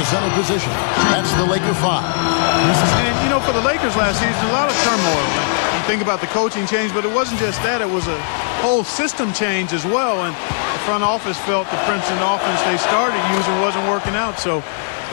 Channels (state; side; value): silent; right; digital silence